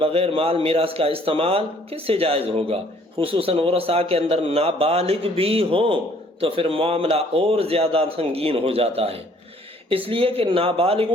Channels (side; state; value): both; normal; correlation 0.60